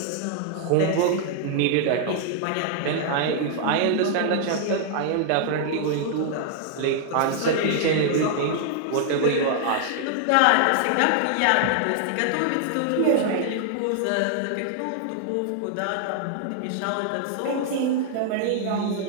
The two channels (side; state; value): both; different; correlation 0.00